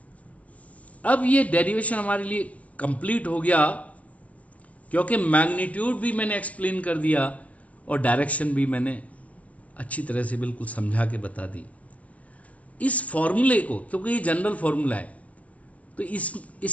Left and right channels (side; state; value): right; late; 0.071 ms